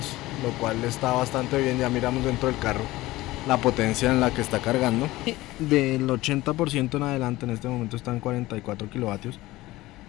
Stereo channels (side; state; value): right; quieter; 18.3 dB